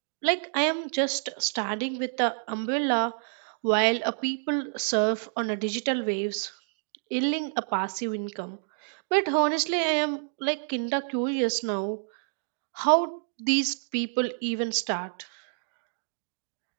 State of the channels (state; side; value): silent; left; digital silence